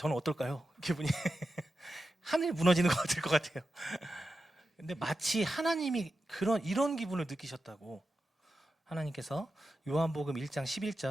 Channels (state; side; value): normal; both; correlation 0.91